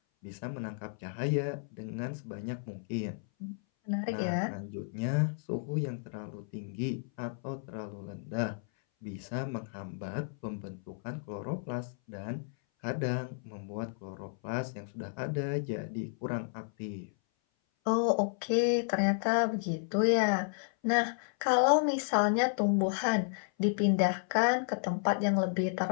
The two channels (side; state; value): right; silent; 56 dB below the other